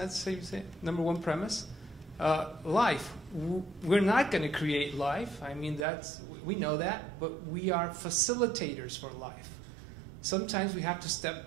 how you say it? Number one premise. Life. We're not going to create life. I mean, we know that, but we are facilitators for life. Sometimes we have to step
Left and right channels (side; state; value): left; drops out; at 5.9 s